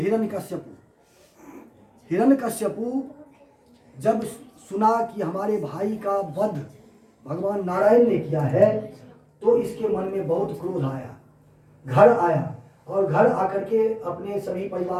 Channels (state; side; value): identical; both; correlation 1.00